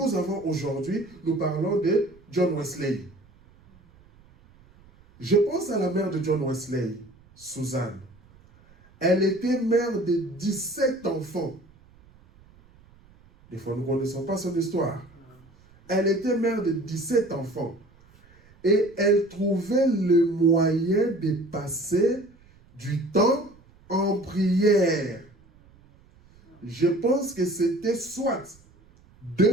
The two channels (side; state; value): right; noise; rumble, 28 dB below the sound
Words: avons aujourd'hui, nous parlons de John Wesley. Je pense à la mère de John Wesley, Suzanne. Elle était mère de 17 enfants. Des fois, nous ne connaissons pas son histoire. Elle était mère de 17 enfants. Et elle trouvait le moyen de passer du temps en prière. Je pense que c'était soit